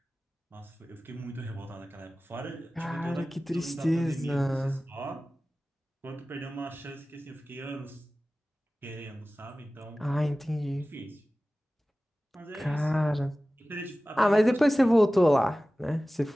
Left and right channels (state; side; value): normal; both; correlation 0.97